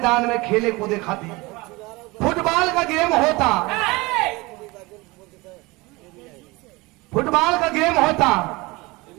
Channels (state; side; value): quieter; left; 23.3 dB